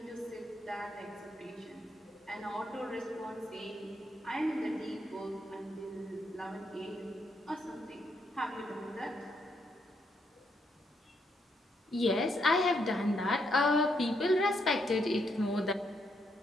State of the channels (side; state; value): both; normal; correlation 0.77